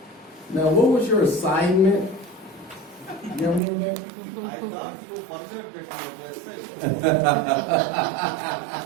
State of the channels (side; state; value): left; drops out; at 3.6 s